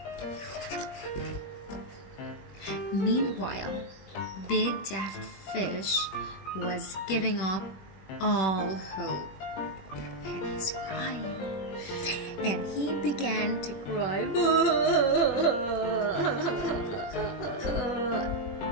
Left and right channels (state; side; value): late; right; 21 ms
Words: Meanwhile, Big Daft Fish was giving up all hope. And he's crying. And he began to cry.